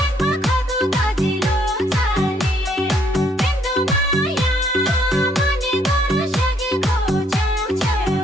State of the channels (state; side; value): normal; both; correlation 0.68